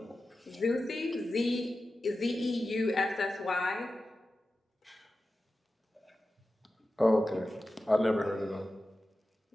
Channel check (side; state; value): both; normal; correlation 0.93